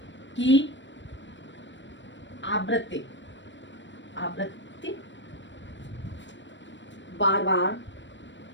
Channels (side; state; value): right; late; 0.53 ms